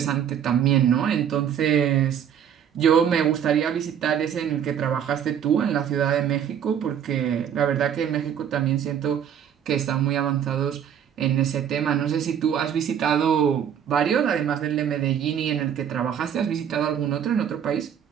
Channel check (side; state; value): left; quieter; 8.9 dB